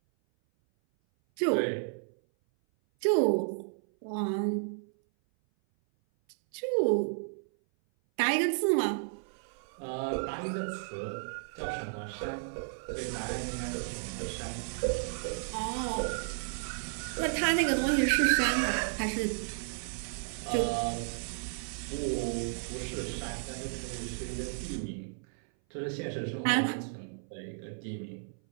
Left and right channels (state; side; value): silent; left; 56 dB below the other